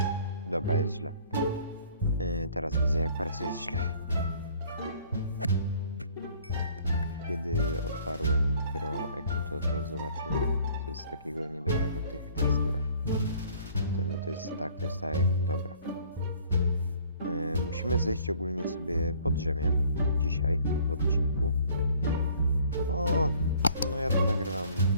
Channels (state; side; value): inverted; both; correlation -0.56